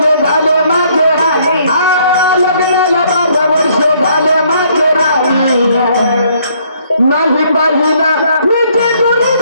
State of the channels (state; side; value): inverted; both; correlation -0.65